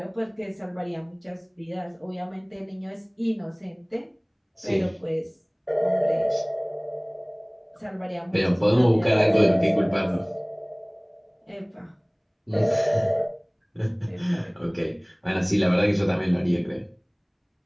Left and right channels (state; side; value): identical; both; correlation 1.00